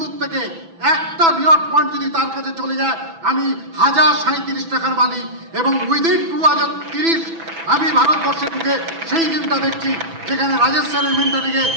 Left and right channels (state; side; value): late; left; 6.0 ms